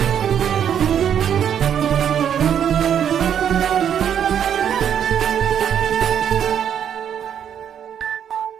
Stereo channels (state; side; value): quieter; left; 8.9 dB